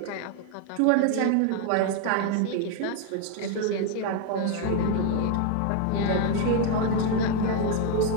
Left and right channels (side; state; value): both; different; correlation 0.01